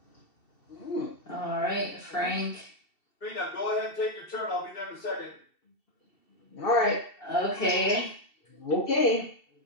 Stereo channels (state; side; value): late; right; 2.7 ms